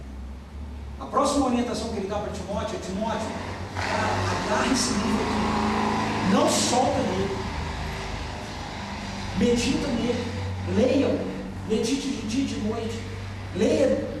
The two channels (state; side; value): identical; both; correlation 1.00